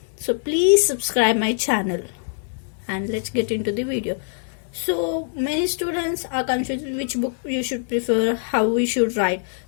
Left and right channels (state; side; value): silent; right; digital silence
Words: so please subscribe my channel and let's get into the video. So many students are confused which book you should prefer, how we should write.